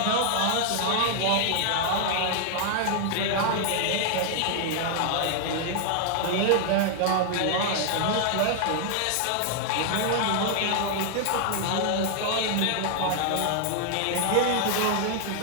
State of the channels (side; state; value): both; different; correlation 0.00